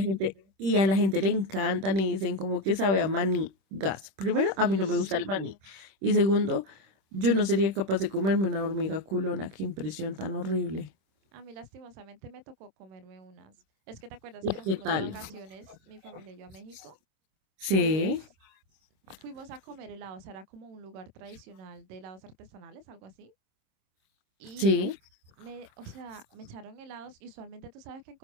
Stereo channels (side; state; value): left; late; 26 ms